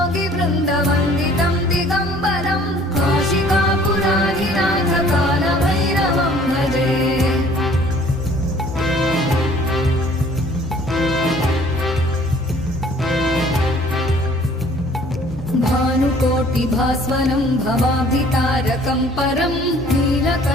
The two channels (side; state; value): both; normal; correlation 0.55